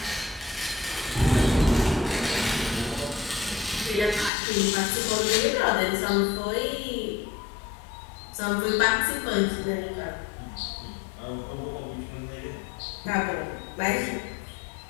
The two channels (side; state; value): right; drops out; at 4.3 s